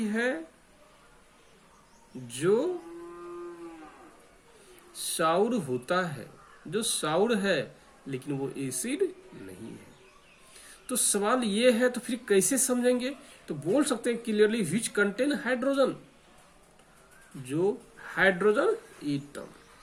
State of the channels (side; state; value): both; identical; correlation 1.00